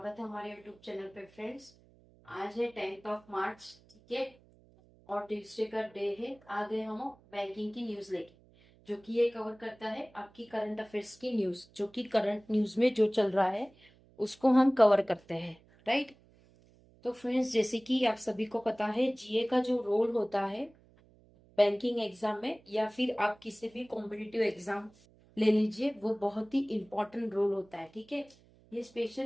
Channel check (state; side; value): noise; right; hum, 28 dB below the sound